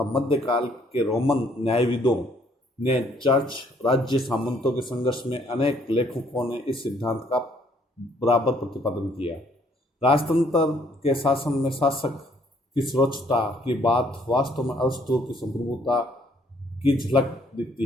मध्यकाल के रोमन न्यायविदों ने चर्च राज्य सामंतों के संघर्ष में अनेक लेखकों ने इस सिद्धांत का बराबर प्रतिपादन किया। राजतंत्र के शासन में शासक की सर्वोच्चता की बात वास्तव में अरस्तु की संप्रभुता की झलक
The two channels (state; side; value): normal; both; correlation 0.65